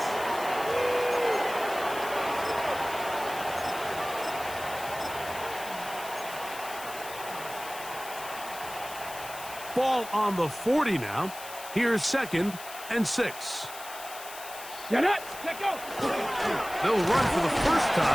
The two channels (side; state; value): left; noise; hiss, 13 dB below the sound